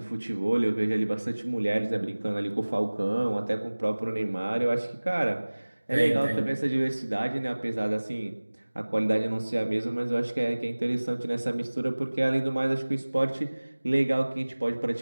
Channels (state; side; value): inverted; both; correlation -1.00